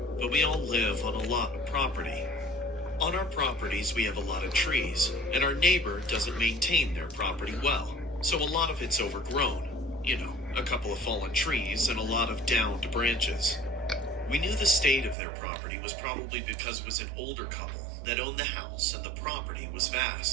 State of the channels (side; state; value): left; drops out; at 15.2 s